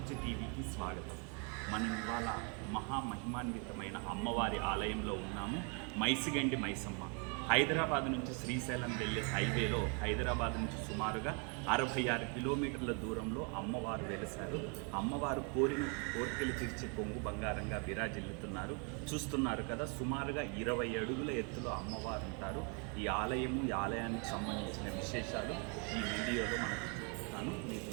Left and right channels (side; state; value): left; quieter; 36.4 dB